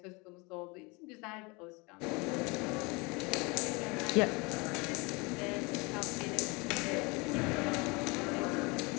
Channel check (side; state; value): right; quieter; 27.3 dB